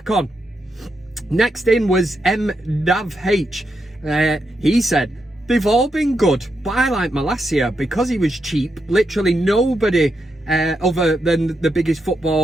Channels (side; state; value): both; normal; correlation 0.84